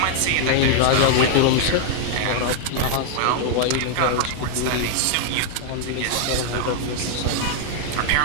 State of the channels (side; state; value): both; different; correlation 0.00